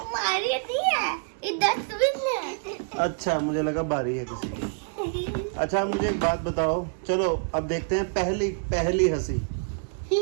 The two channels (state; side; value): silent; left; 58 dB below the other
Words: नहीं है, ये डस्टबिन है। अच्छा, मुझे लगा बारी है किसी की। अच्छा, मुझे एक बात बताओ। चलो अब देखते हैं पहली हंसी।